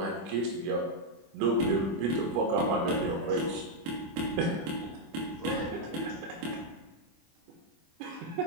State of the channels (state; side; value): late; left; 25 ms